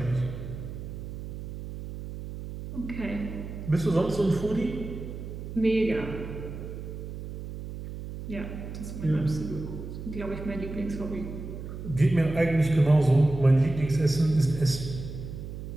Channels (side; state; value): right; noise; hum, 9 dB below the sound